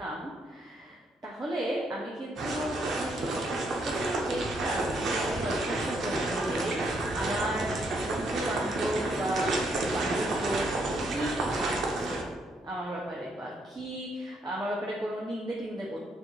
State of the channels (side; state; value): both; normal; correlation 0.73